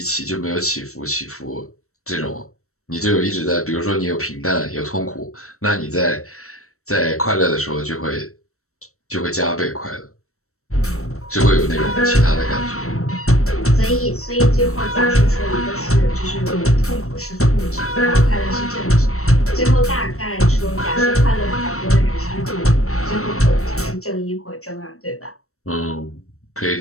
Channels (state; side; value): late; right; 0.63 ms